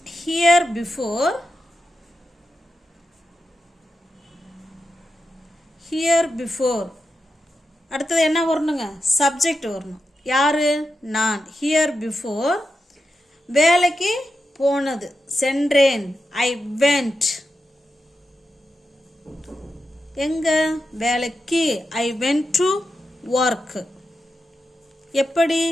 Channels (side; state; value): both; normal; correlation 0.88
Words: Here before, here before. அடுத்தது என்ன வரணுங்க? சப்ஜெக்ட் வரணும். யாரு? நான். ஹியர் பிஃபோர் வேலைக்கு போனது, சென்றேன். I went. எங்க? வேலைக்கு. I went to work. எப்படி?